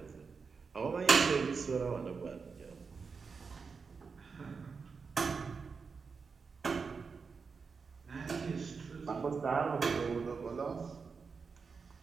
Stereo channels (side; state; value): left; quieter; 5.2 dB